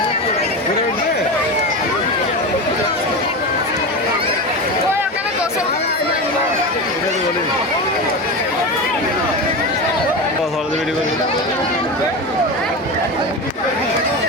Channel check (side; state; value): both; normal; correlation 0.22